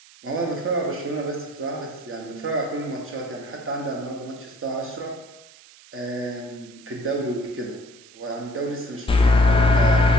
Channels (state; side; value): noise; right; hiss, 23 dB below the sound